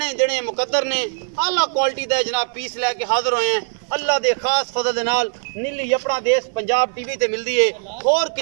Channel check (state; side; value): silent; left; digital silence